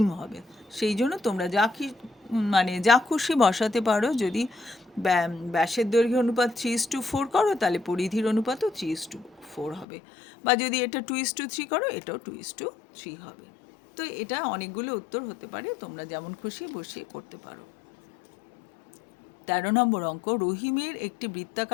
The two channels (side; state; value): right; drops out; at 9.9 s